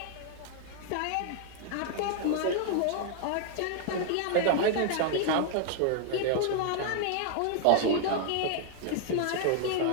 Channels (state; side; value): different; both; correlation 0.00